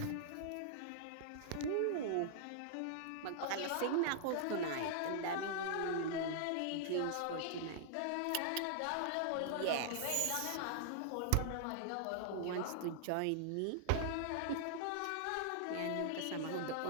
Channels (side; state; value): both; different; correlation -0.01